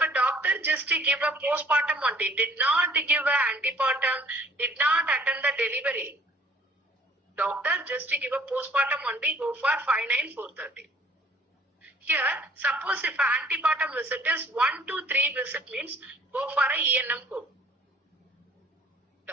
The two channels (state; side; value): normal; both; correlation 0.57